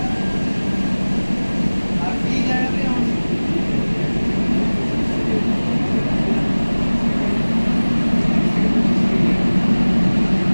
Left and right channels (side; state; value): both; inverted; correlation -1.00